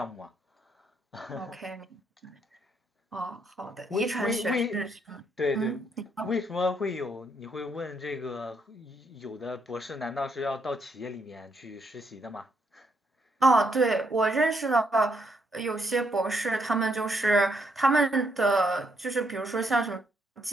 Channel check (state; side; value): normal; both; correlation 0.74